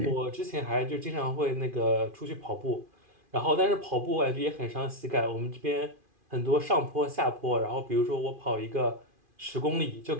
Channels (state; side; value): late; left; 2.4 ms